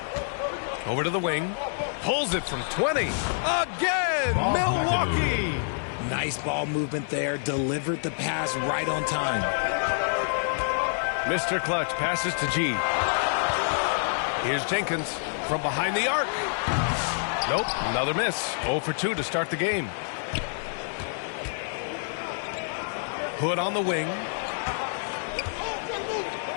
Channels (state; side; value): silent; right; digital silence